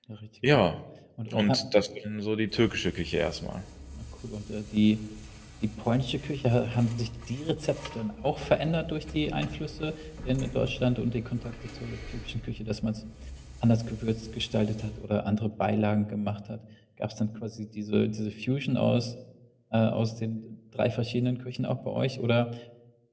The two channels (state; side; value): identical; both; correlation 1.00